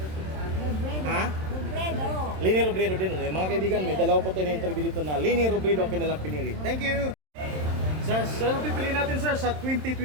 Ha? Robredo. Lenny Robredo din. Mga kaibigan, may dalawa po tayo na interview dito na Lenny Robredo ang kanilang pinili. Thank you! Sir, ano pipiliin natin, sir, sa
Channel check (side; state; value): left; late; 27 ms